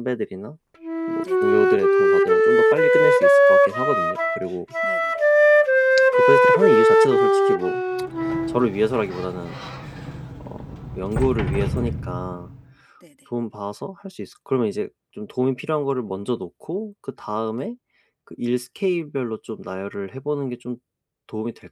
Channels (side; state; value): both; identical; correlation 1.00